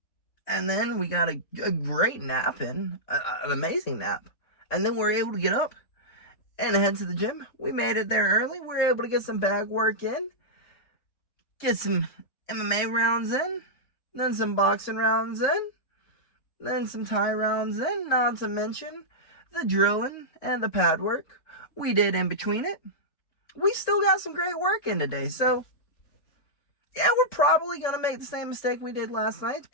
And then we got a great nap in, an amazing nap. And then we were able to get up and head to the gym. We made it there early. We were able to get some bag work in, get some MMA rounds in, then some boxing rounds in, then some Thai rounds in, not to mention the drilling and the pad work we did in between it. We still got some great work in today. So, yeah, we're probably going to make the same mistake we did last night,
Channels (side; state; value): right; late; 3.7 ms